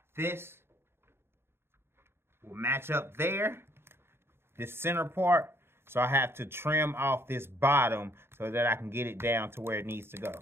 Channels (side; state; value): left; late; 0.11 ms